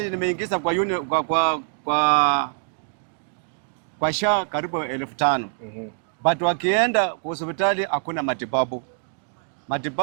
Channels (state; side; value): silent; left; digital silence